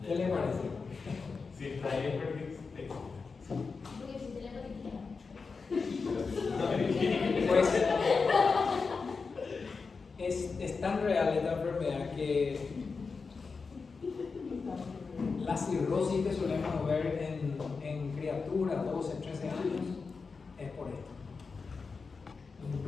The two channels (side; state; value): right; quieter; 4.7 dB